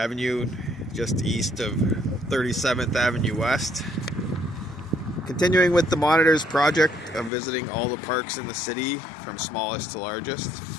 just east of 37th Avenue West. Continuing with the Monitors project of visiting all the parks in the city from smallest to largest.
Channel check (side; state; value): right; drops out; at 7.3 s